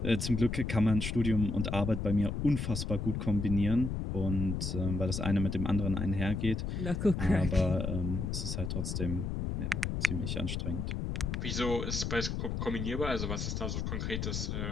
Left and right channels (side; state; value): left; noise; rumble, 2 dB below the sound